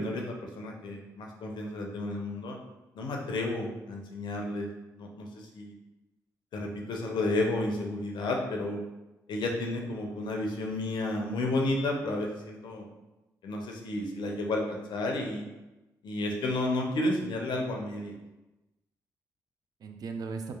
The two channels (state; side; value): normal; both; correlation 0.66